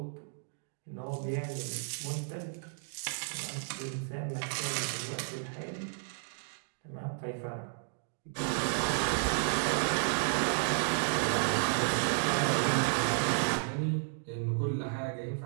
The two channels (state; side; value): silent; left; digital silence